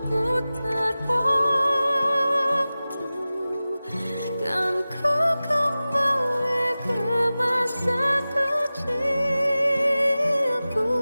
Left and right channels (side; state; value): both; inverted; correlation -0.96